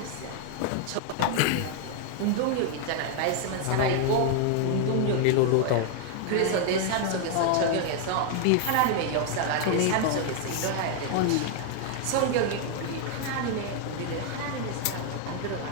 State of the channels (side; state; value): both; different; correlation 0.00